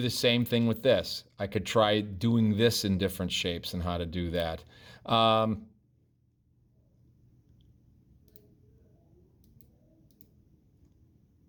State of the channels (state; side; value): identical; both; correlation 1.00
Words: the same thing with this. I could try doing this in different shapes and how to do that.